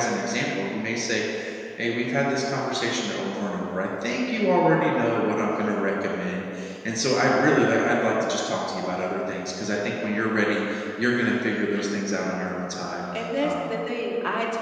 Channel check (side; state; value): both; identical; correlation 1.00